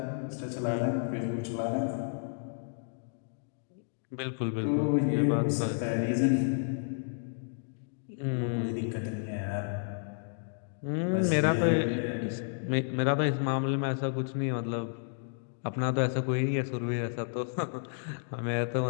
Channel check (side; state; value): right; silent; digital silence